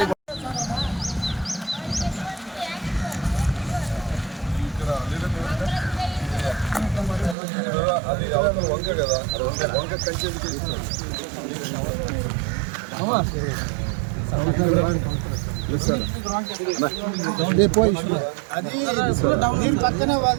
వంక కదా వంక కంచె దీని పక్కన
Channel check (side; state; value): left; drops out; at 7.4 s